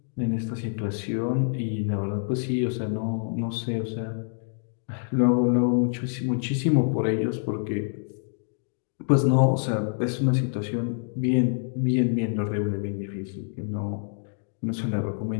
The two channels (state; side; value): silent; right; digital silence